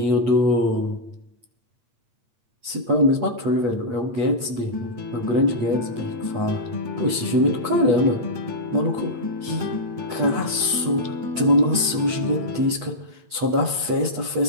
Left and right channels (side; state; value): left; late; 8.3 ms